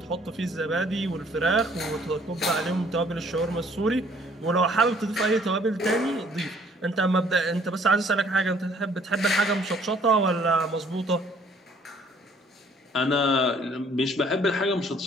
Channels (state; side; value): normal; both; correlation 0.60